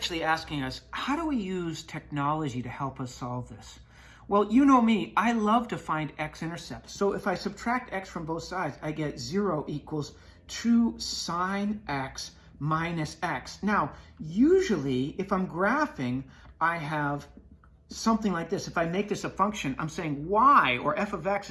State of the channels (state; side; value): identical; both; correlation 1.00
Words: asking us, how do we use technology to help us solve this? Well, you know me, I love to find x-intercepts. So if I subtract x from both sides, I get 0 equals 2 sine x minus x. Now, usually, if I'm graphing, I have something like this. If I make this a function, I'm saying y, or f of x,